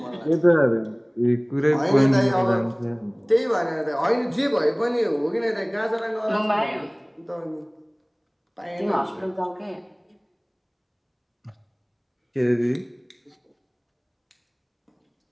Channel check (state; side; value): identical; both; correlation 1.00